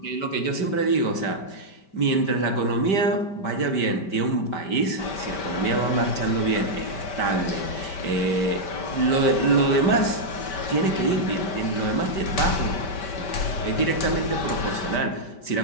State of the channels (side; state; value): right; late; 5.1 ms